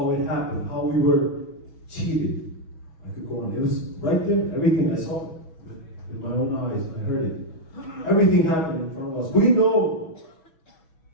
it happened, how we were cheated. I could go on. It was right there, everything. I saw it with my own eyes. I heard it. Everything happened in front of us. We know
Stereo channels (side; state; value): right; late; 6.2 ms